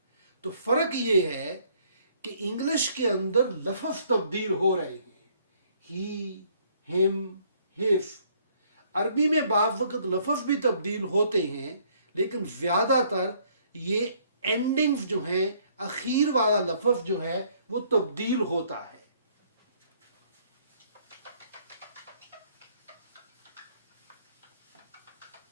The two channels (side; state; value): both; inverted; correlation -0.64